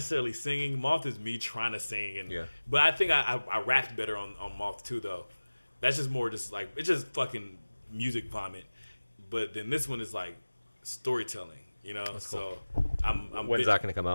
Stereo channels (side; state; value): both; inverted; correlation -1.00